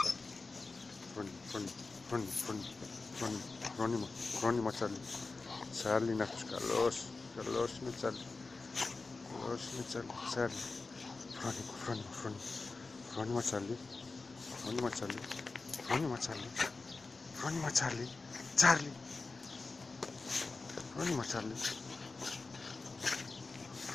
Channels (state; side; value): quieter; right; 3.8 dB